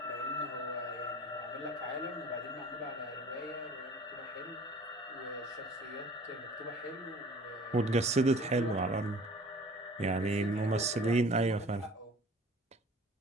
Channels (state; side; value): normal; both; correlation 0.47